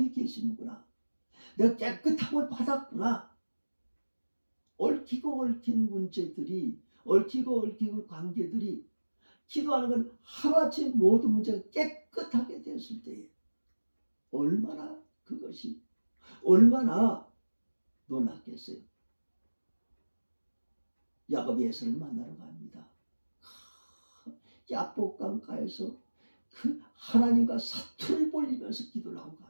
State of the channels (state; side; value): inverted; both; correlation -1.00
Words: 계시는구나. 내가 깨끗함을 받았구나. 얽히고 얽힌 문제들이, 얽히고 얽힌 관계들이, 기도하는 건 하루아침에 모든 문제가 깨끗하게 되었을 때에 얼마나 그것이 얼마나 놀랐겠어요. 야곱이 에서를 만나러 갑니다. 야복강가에서 그 하나님과 사투를 벌이면서 기도를 하고